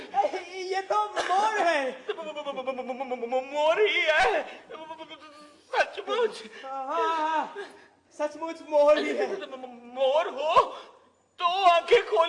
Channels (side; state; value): both; identical; correlation 1.00